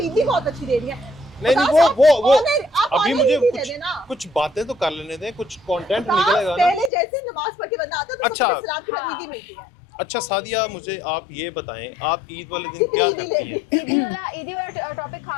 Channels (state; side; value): drops out; right; at 6.9 s